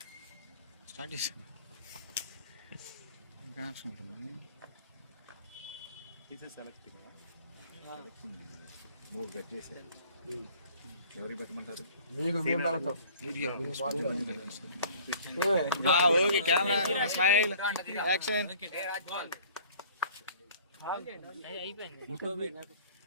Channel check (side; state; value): both; inverted; correlation -0.51